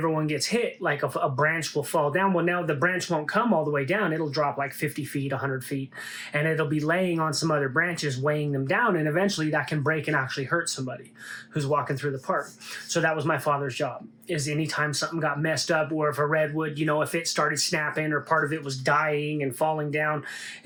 gets hit, like a branch will fall down. Well, now the branch won't come all the way down. It'll drop like 50 feet, 100 feet. And it'll be laying on some other branches, weighing them down. And eventually that can break and actually hurt somebody who's walking through the park. So that was my father's job, is anytime something got messed up, or if a redwood, if it started snapping or part of it was dying and falling down,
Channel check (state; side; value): identical; both; correlation 1.00